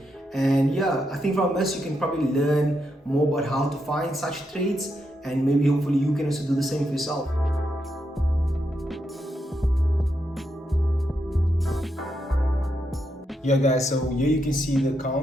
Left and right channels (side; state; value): both; normal; correlation 0.82